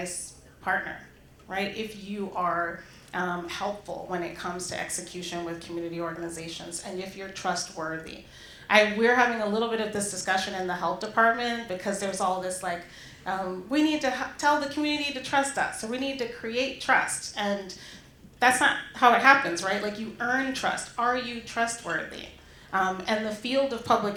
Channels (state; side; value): identical; both; correlation 1.00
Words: partner, right? If you are helpful when it comes to execution with community organizations, and if you're trustworthy. We're having a little bit of this discussion in the health department because there's all this like, we need to tell the community to trust us, so we need to create trust. And that's not how it happens, right? Like, you earn trust. Are you trustworthy? And the field of public